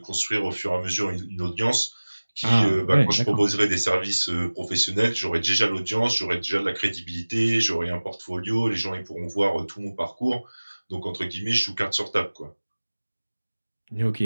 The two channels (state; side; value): inverted; both; correlation -1.00